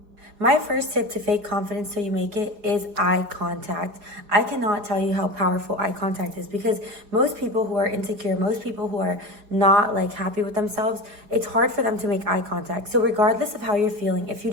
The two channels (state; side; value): late; left; 4.8 ms